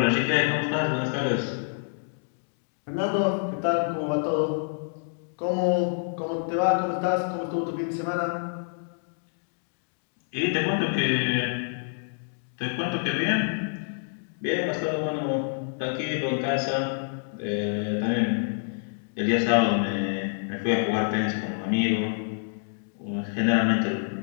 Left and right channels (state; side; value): silent; right; digital silence